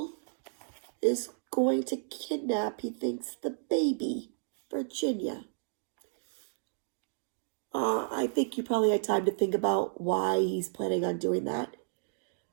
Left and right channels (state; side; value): silent; left; digital silence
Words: is going to kidnap, he thinks, the baby, Virginia. I think you probably had time to think about why he's planning on doing that.